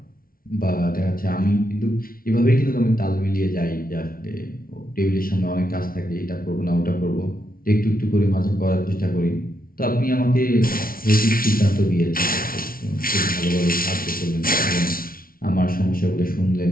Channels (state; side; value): late; right; 0.43 ms